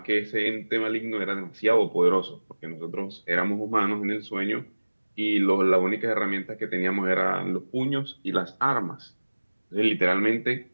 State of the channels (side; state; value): both; inverted; correlation -1.00